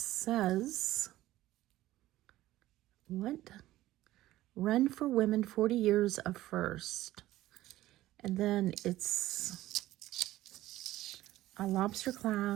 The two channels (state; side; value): quieter; left; 15.6 dB